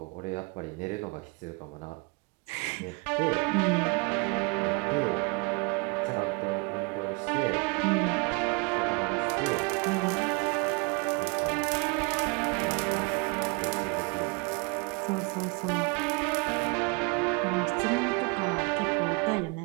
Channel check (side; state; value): left; quieter; 30.9 dB